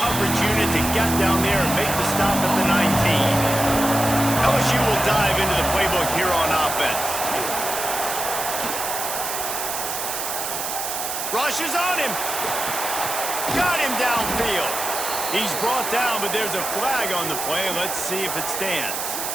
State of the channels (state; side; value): noise; right; hiss, 4 dB below the sound